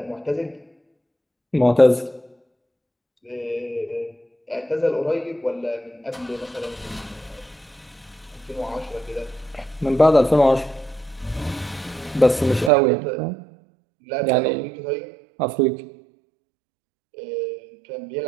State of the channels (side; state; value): left; drops out; at 12.7 s